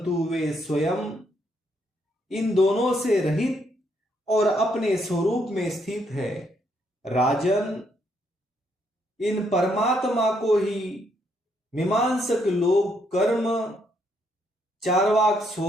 वे स्वयं इन दोनों से रहित और अपने स्वरूप में स्थित है। राजन, इन परमात्मा को ही मीमांसक लोग कर्म, चार्वाक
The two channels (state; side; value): normal; both; correlation 0.74